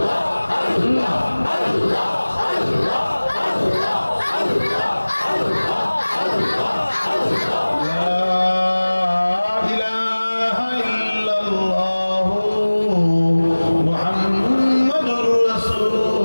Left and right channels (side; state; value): both; inverted; correlation -1.00